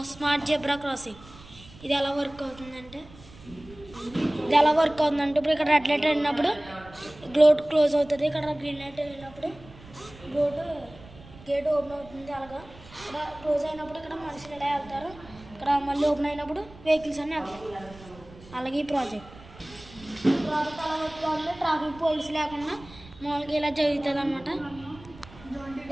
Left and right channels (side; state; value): right; noise; rumble, 20 dB below the sound